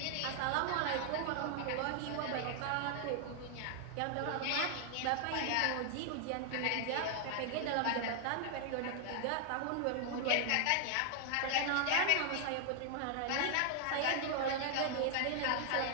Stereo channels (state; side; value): different; both; correlation 0.00